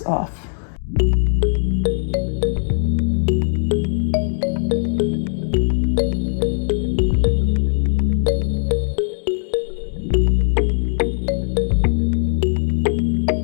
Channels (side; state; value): right; silent; digital silence